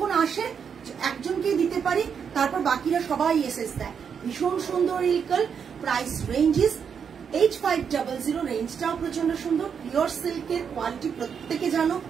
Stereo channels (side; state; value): left; quieter; 7.0 dB